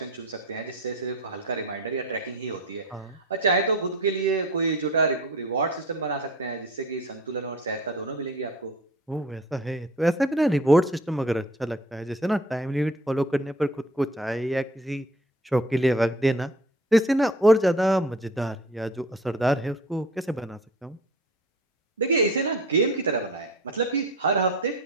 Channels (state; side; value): normal; both; correlation 0.44